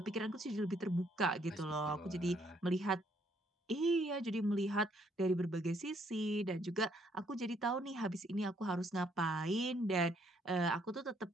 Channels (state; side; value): normal; both; correlation 0.68